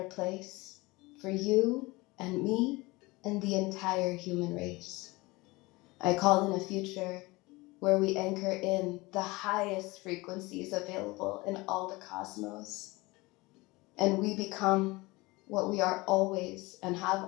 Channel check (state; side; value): quieter; right; 22.6 dB